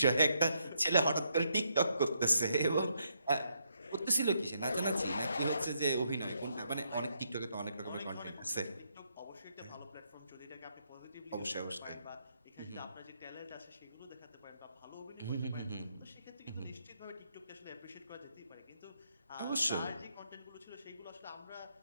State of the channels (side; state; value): both; inverted; correlation -0.76